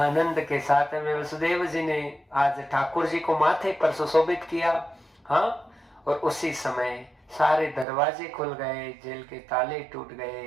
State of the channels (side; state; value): left; drops out; at 7.9 s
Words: के साथ में वसुदेव जी ने आज ठाकुर जी को माथे पर सुशोभित किया। हाँ, और उसी समय सारे दरवाजे खुल गए, जेल के ताले टूट